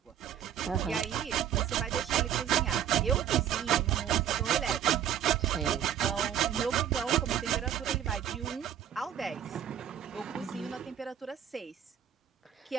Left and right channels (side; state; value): left; quieter; 9.8 dB